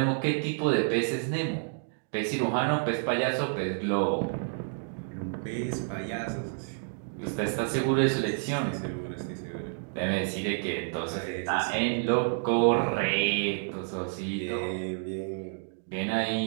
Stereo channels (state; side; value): silent; left; digital silence